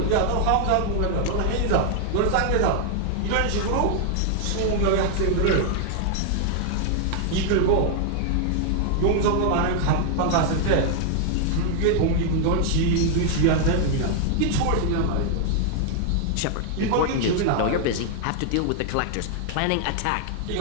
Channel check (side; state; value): both; different; correlation 0.00